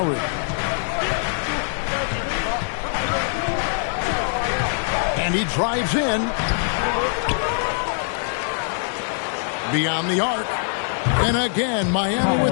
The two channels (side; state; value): right; silent; 64 dB below the other